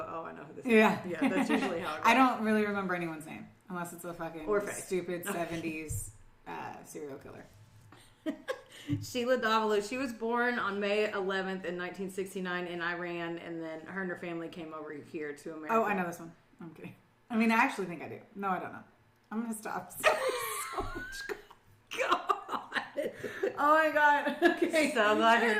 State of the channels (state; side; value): identical; both; correlation 1.00